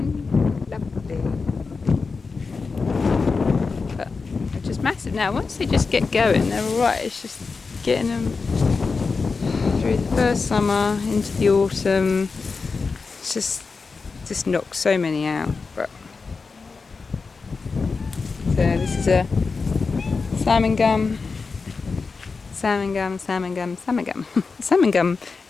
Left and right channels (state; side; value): quieter; right; 4.6 dB